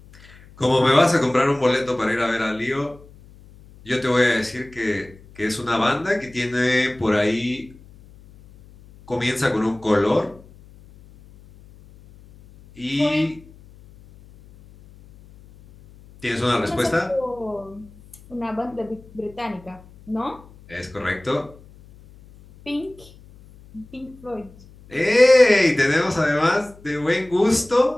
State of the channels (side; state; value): left; noise; hum, 23 dB below the sound